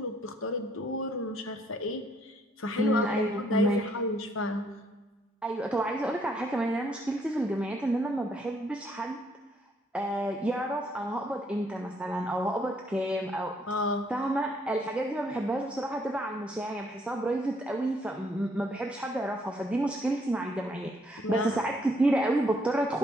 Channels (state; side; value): normal; both; correlation 0.68